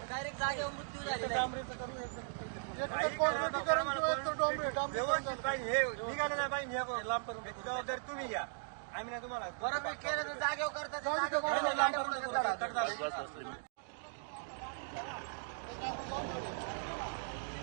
डायरेक्ट जागेवर मृत्यू झालेला आहे। जबाबदारी तुम्ही घ्या, आम्ही ना तुम्हाला बरोबर केलं तर जागेवर करतात।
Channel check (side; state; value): left; silent; digital silence